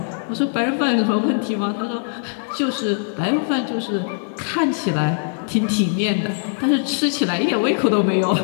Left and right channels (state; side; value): silent; right; digital silence